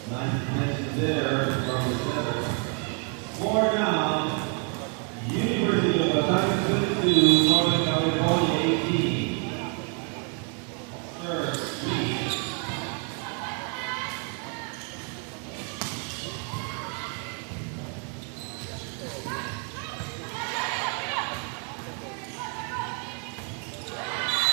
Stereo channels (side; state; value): left; quieter; 37.8 dB